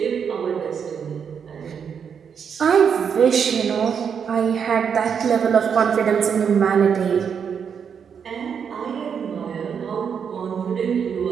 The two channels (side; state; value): left; quieter; 7.1 dB